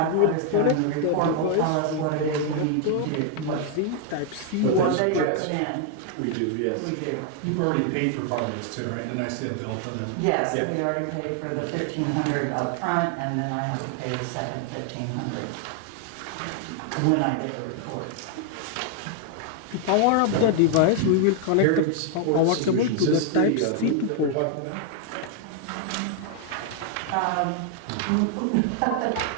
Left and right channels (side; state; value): both; different; correlation 0.00